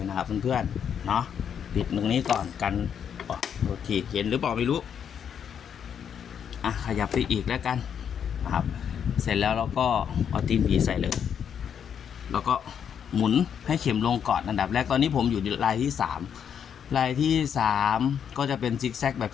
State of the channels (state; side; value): quieter; right; 8.1 dB